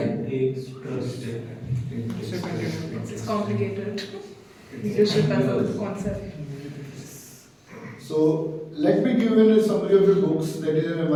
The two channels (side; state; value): both; identical; correlation 1.00